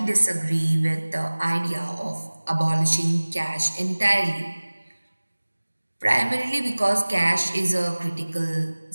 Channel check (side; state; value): both; inverted; correlation -1.00